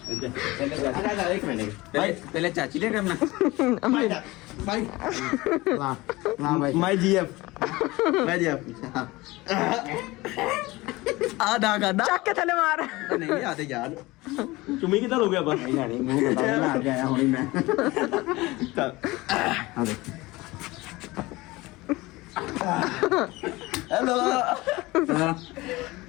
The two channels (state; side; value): quieter; right; 20.9 dB